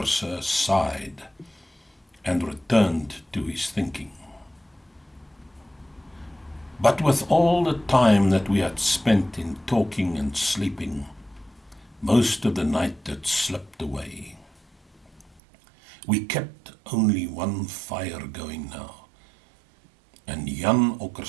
sighed and returned to his thinking. But with all the time that we had spent in talking and sleeping, most of the night had slipped away. We kept only one fire going now, and Jan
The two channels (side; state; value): left; drops out; at 15.4 s